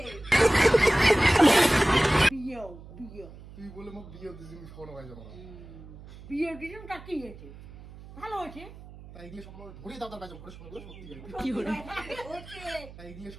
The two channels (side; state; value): right; noise; hum, 17 dB below the sound